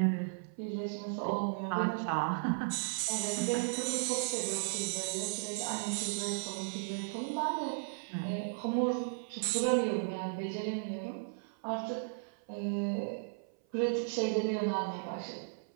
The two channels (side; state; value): left; silent; 54 dB below the other